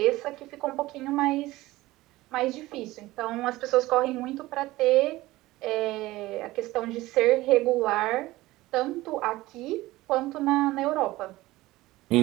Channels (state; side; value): quieter; left; 18.2 dB